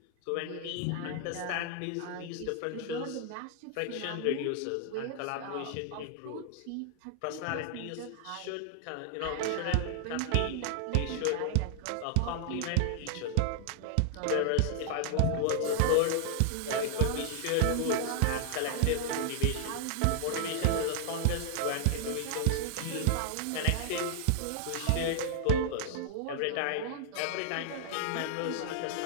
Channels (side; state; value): both; different; correlation 0.00